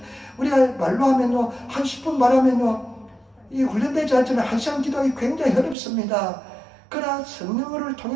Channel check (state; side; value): drops out; left; at 5.8 s